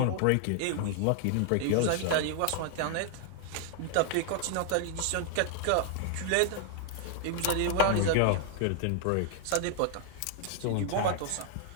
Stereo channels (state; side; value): different; both; correlation 0.00